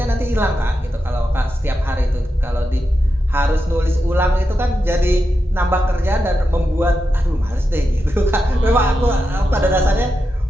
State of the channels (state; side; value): normal; both; correlation 0.88